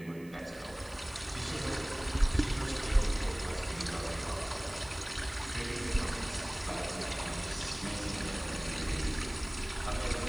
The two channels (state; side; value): noise; right; hiss, 24 dB below the sound